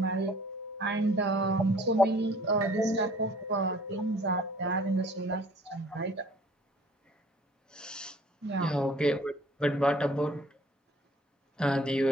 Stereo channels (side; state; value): both; normal; correlation 0.53